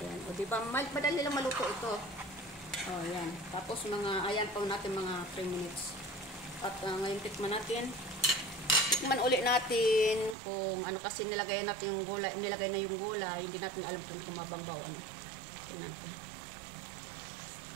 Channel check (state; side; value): drops out; left; at 10.4 s